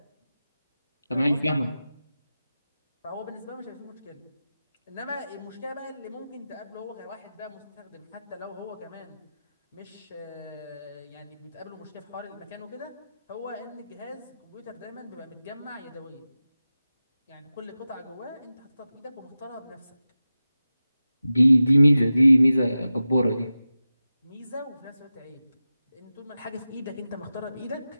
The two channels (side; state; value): both; inverted; correlation -0.94